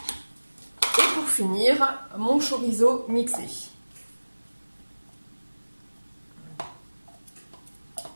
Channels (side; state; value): both; inverted; correlation -1.00